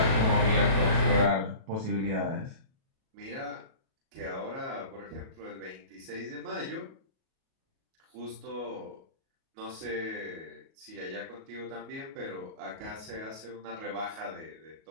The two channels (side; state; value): left; late; 37 ms